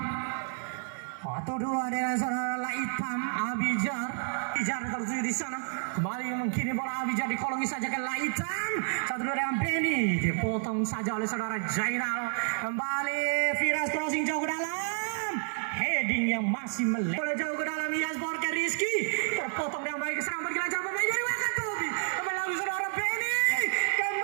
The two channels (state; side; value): silent; left; 58 dB below the other